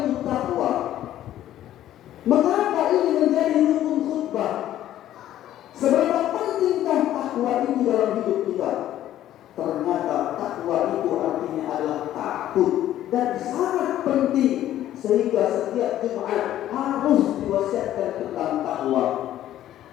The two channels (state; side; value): quieter; right; 12.6 dB